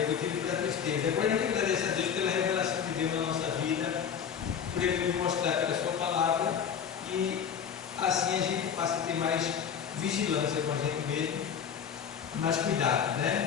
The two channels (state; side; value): quieter; right; 7.7 dB